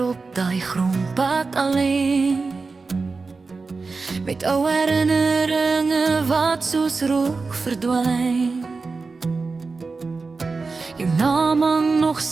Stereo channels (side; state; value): left; quieter; 4.2 dB